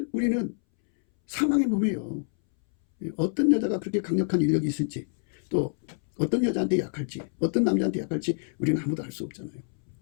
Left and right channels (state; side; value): silent; right; 60 dB below the other